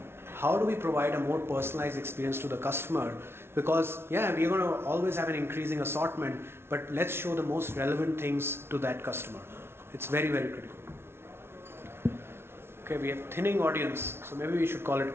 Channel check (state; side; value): late; left; 0.12 ms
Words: How do we provide a more personalized experience to the customer? Because yeah, we're going to always have an increasing assortment, but let's show the most relevant things to that customer. It's very, very critical. Okay, we have thinning audience, so maybe we should call it